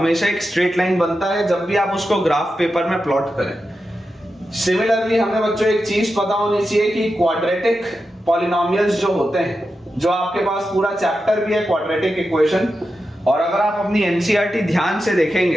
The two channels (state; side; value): normal; both; correlation 0.90